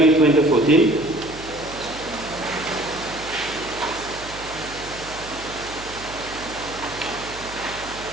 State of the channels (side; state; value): right; noise; hum, 16 dB below the sound